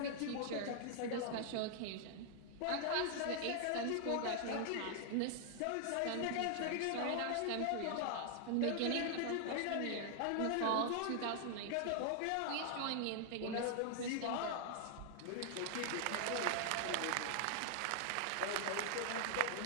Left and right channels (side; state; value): both; different; correlation 0.00